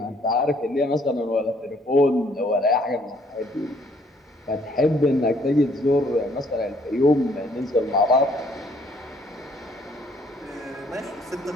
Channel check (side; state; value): both; normal; correlation 0.64